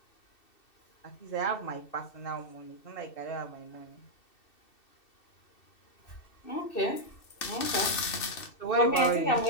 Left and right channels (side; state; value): right; late; 2.7 ms